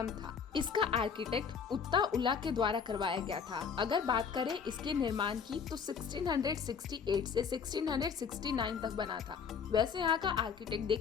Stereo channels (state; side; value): quieter; right; 6.5 dB